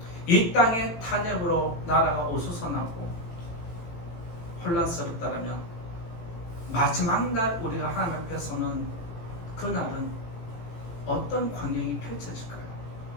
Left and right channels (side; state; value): right; late; 18 ms